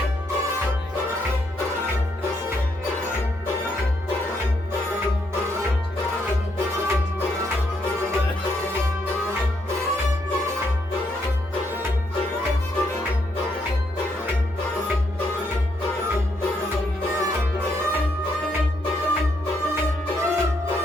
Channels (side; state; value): both; normal; correlation 0.76